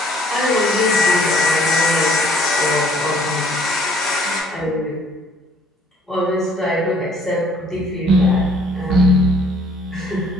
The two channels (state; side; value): normal; both; correlation 0.59